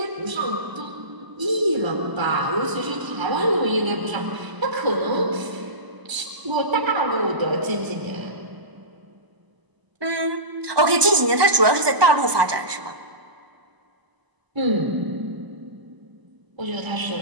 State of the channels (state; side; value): late; left; 1.2 ms